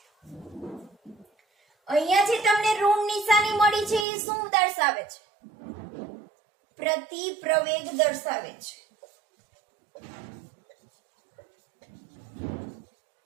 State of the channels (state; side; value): drops out; left; at 4.0 s